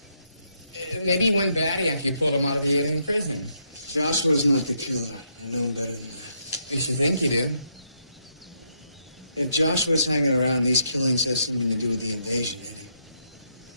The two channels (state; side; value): inverted; both; correlation -0.77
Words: Maybe he went batty after you pulled him out of the alien prison. Joshua's not the killer. I know him better than that. You should think you do. If Joshua's hanging around, these killings have something to do with the invasion, Eddie.